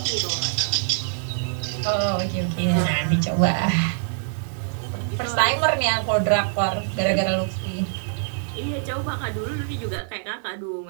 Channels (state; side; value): silent; left; 62 dB below the other